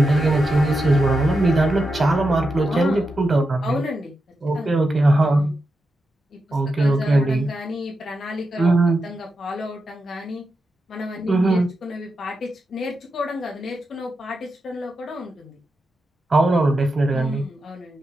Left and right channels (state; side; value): normal; both; correlation 0.88